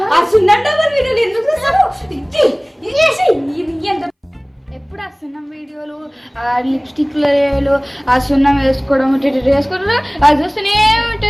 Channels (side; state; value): both; identical; correlation 1.00